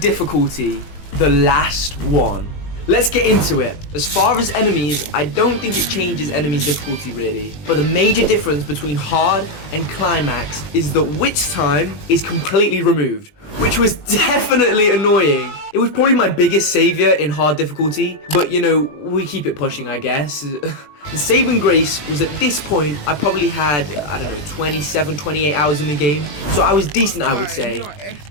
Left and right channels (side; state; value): right; late; 20 ms